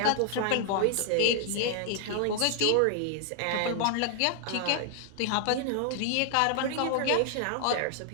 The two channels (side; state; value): both; different; correlation 0.00